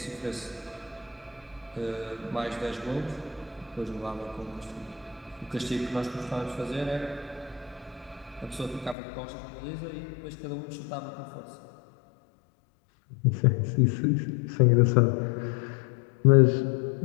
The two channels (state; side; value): drops out; right; at 9.0 s